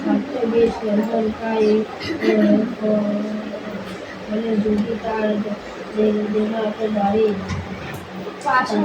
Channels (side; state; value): both; identical; correlation 1.00